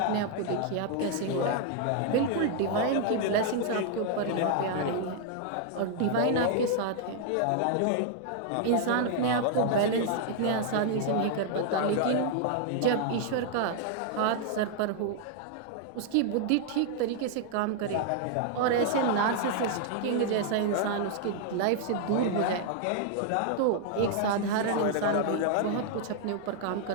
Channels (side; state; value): both; different; correlation 0.00